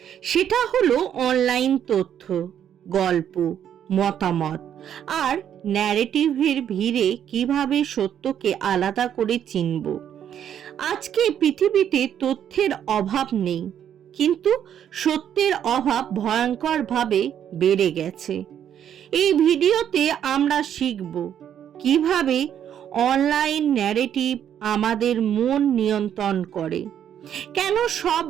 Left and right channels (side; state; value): left; quieter; 9.6 dB